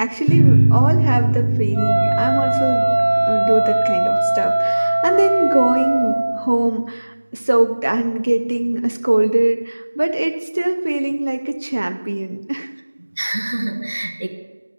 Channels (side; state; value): both; inverted; correlation -1.00